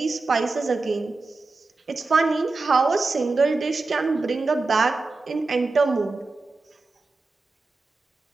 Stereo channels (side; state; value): left; quieter; 3.6 dB